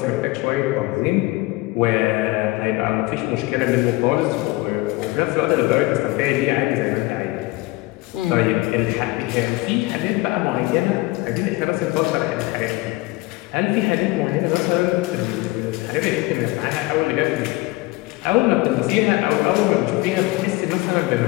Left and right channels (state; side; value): quieter; right; 21.2 dB